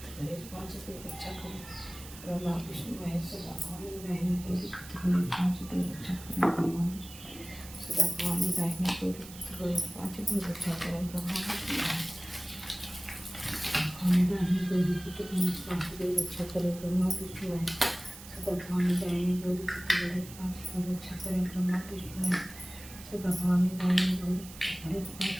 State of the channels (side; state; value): right; noise; hiss, 16 dB below the sound